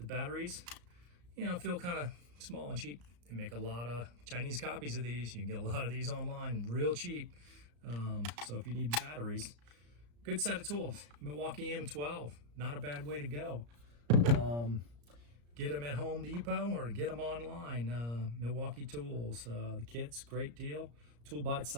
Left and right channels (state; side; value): late; left; 34 ms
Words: batteries, feel kind of small and cheap. They make a lot of Chinese copies of these. You can get a lot of these online real cheap. So if you need batteries, good set of tools. Milwaukee M12, not a bad way to go. Get them at Home Depot or get them online. Milwaukee Tools, the kit's great deal. Tool by